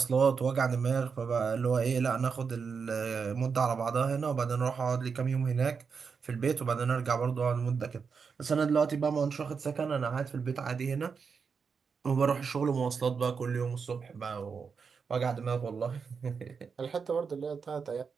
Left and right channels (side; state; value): left; quieter; 5.7 dB